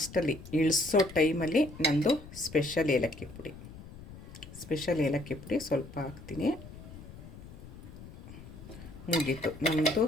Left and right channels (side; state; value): left; noise; rumble, 15 dB below the sound